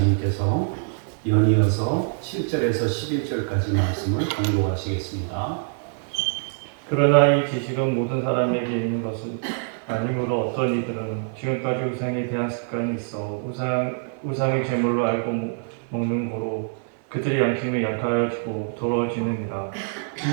연이어서 7절에서 11절까지 말씀을 봉독하시겠습니다. 그러나 이 지식은 모든 사람에게 있는 것은 아니므로 어떤 이들은 지금까지 우상에 대한 습관이 있어 우상의 제물로 알고 먹는 거로 그들의 양심이 약하여지고 더러워지느니라.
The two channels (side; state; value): left; silent; digital silence